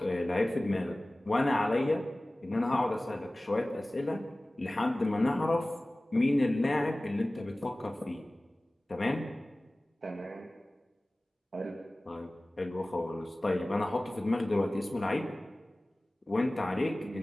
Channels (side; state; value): both; normal; correlation 0.98